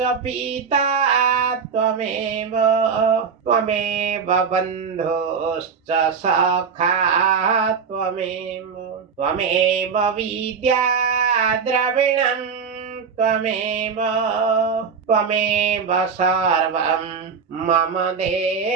पिता त्वमेव बन्धुश्च सखा त्वमेव विद्या द्रविणं त्वमेव सर्वं मम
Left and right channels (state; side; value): quieter; left; 6.1 dB